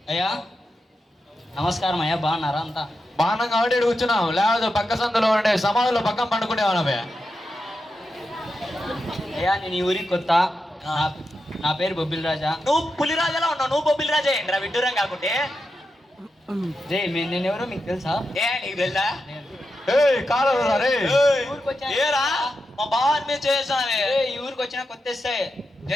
అయ్యా నమస్కారం అయ్యా, బాగున్నారా అంతా? బాణం కాబట్టి ఈడ కూర్చున్నాం, లేకపోతే పక్క సందులో ఉండే సమాధుల్లో పక్కన పండుకునేవాళ్ళమే. అయ్యా నేను ఈ ఊరికి కొత్త. నా పేరు బొబ్బిల్ రాజా. నువ్వు పులిరాజాలా ఉన్నావు, నువ్వు బొబ్బిలి రాజా ఏంట్రా విడ్డూరం కాకుంటే. నేను ఎవరో మీకు తెలుసా? ఏ నీకు తెలుసా? కాదు రే. ఏరా మా బావాని మీద చేసావే. ఈ ఊరికి వచ్చిన కొత్త ఎస్ఐ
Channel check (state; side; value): normal; both; correlation 0.88